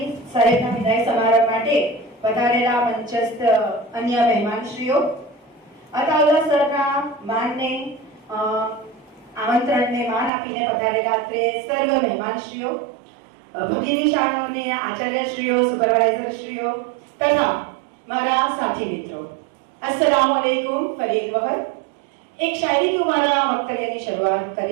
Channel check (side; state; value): left; drops out; at 10.3 s